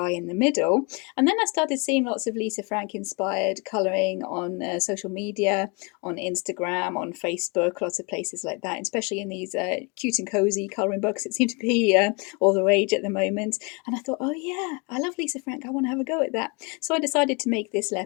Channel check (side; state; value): right; quieter; 30.7 dB